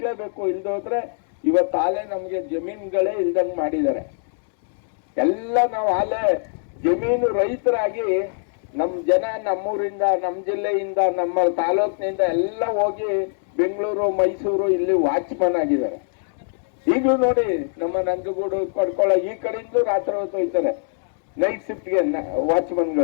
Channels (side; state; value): right; silent; digital silence